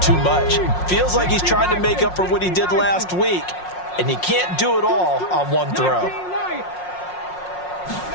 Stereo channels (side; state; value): right; late; 5.5 ms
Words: much. Feels like he's trying to make up for what he did last week, and he can't do it all on one throw.